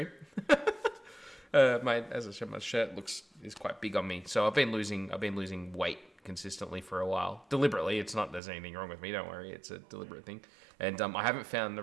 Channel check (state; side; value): drops out; left; at 8.4 s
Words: As I said, my shirt is quite big on me. So I've been losing weight consistently for a while. Deliberately. It's not there's anything wrong with me. Don't worry. It's a deliberate thing. And I haven't found the